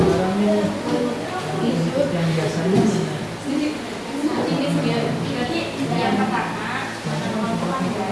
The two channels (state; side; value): identical; both; correlation 1.00